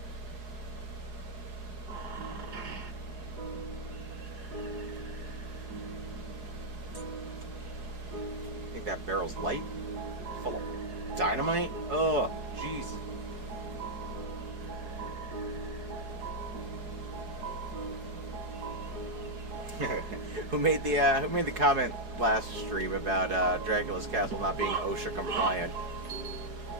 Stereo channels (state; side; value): late; left; 4.7 ms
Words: Think that barrel's light? Full of dynamite? Oh, jeez. Who made the comment last stream about Dracula's castle not being OSHA compliant?